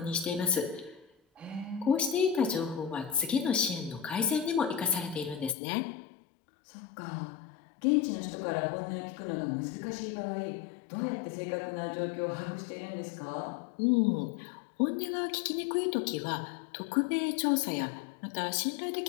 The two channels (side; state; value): right; drops out; at 5.6 s